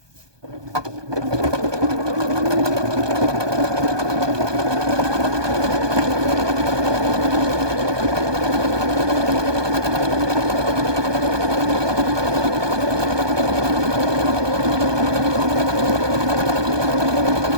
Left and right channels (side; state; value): left; late; 1.2 ms